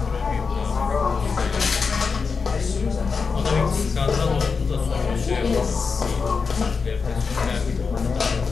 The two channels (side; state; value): right; quieter; 5.1 dB